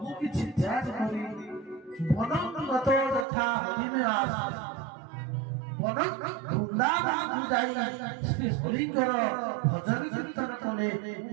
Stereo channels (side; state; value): left; drops out; at 3.2 s